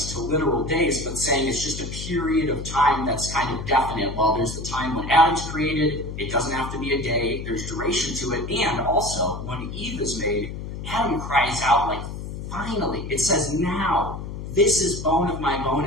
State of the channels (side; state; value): left; noise; hum, 8 dB below the sound